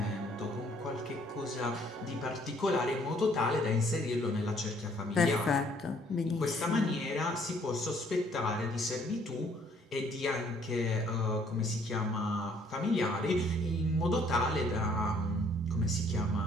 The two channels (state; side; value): normal; both; correlation 0.63